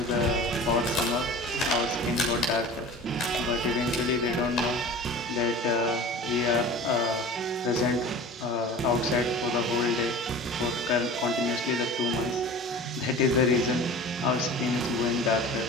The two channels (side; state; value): both; normal; correlation 0.38